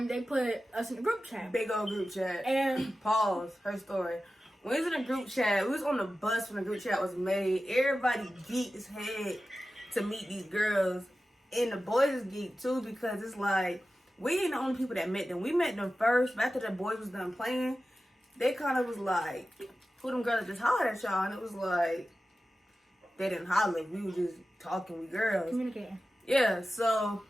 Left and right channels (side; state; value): both; normal; correlation 0.94